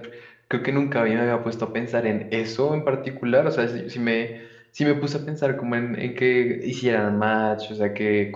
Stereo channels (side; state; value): both; identical; correlation 1.00